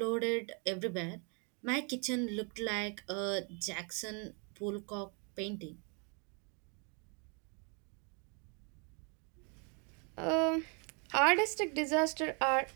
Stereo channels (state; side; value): quieter; left; 36.1 dB